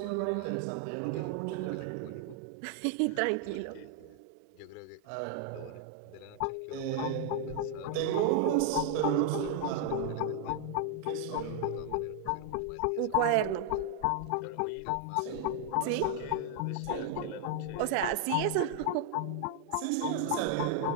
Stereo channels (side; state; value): both; different; correlation 0.00